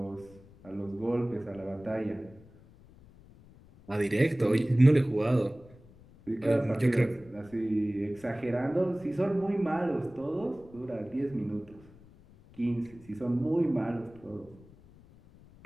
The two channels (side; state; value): left; noise; rumble, 23 dB below the sound